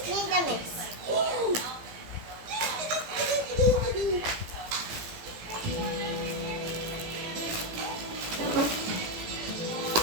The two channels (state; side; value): late; left; 18 ms